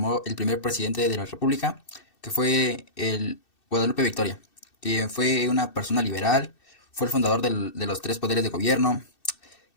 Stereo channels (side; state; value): right; late; 2.6 ms